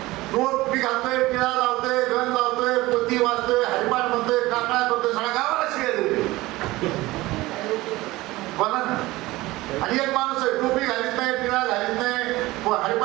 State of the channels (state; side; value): quieter; left; 19.1 dB